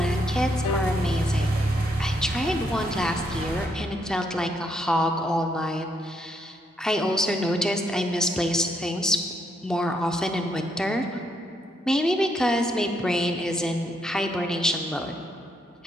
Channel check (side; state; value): both; normal; correlation 0.75